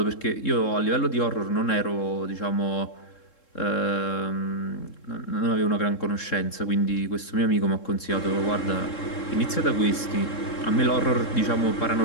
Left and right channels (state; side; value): late; right; 3.7 ms